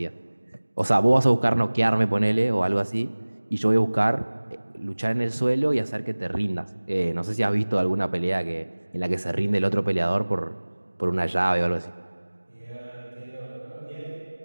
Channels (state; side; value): inverted; both; correlation -1.00